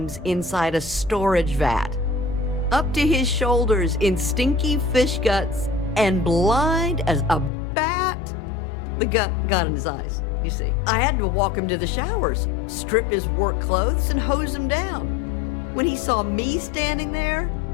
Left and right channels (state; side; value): drops out; right; at 7.5 s